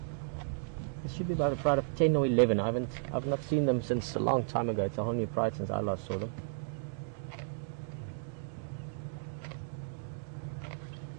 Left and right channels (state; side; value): silent; left; digital silence